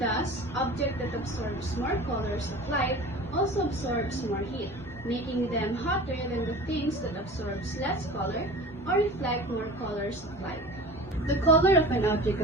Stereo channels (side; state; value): both; normal; correlation 0.38